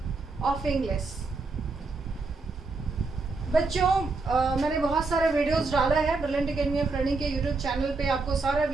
of English. बच्चों मैंने बहुत सारे videos डाला है brilliant academy of learning के YouTube channel पे। आपको सारा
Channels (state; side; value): quieter; left; 3.8 dB